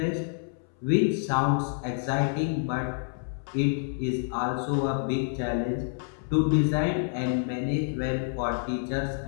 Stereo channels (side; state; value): right; silent; 59 dB below the other